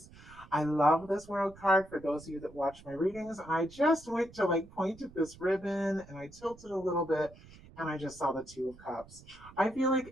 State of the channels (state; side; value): noise; right; rumble, 21 dB below the sound